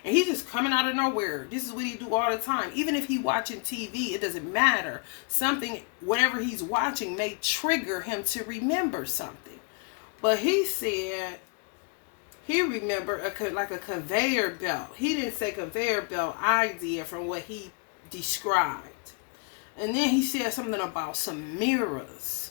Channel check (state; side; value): quieter; right; 37.0 dB